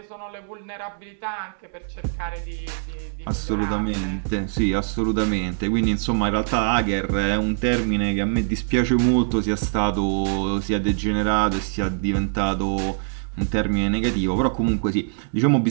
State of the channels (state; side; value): silent; left; 63 dB below the other